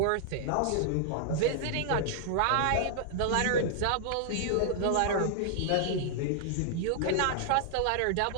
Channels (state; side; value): different; both; correlation -0.01